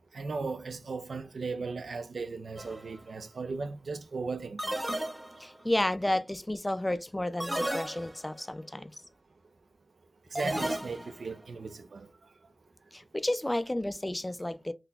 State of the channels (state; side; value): normal; both; correlation 0.97